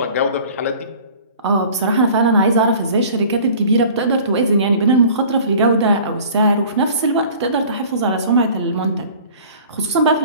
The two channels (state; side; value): inverted; both; correlation -0.46